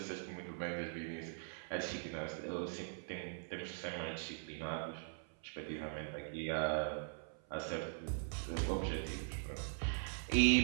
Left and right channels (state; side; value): silent; left; 50 dB below the other